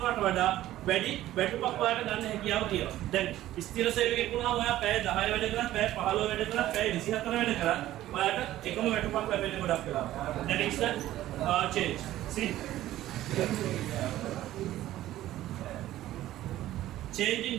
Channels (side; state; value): left; quieter; 14.3 dB